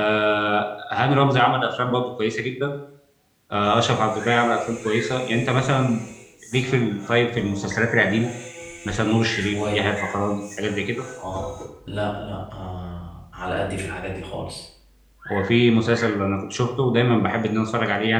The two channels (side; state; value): both; identical; correlation 1.00